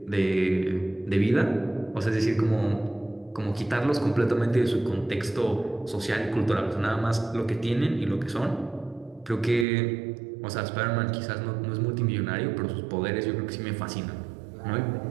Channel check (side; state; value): left; drops out; at 9.7 s